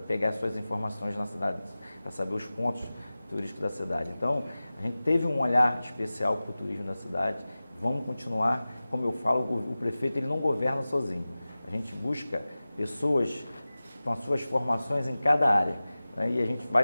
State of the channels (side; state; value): both; inverted; correlation -0.97